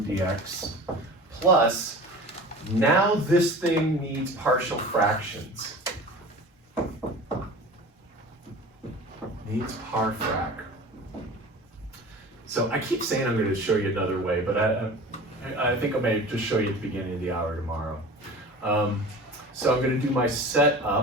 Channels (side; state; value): both; normal; correlation 0.38